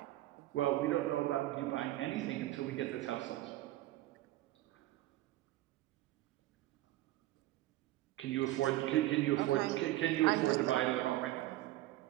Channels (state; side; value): quieter; left; 16.2 dB